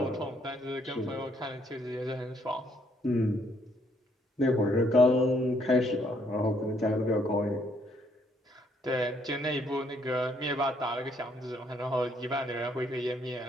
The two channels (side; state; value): both; normal; correlation 0.69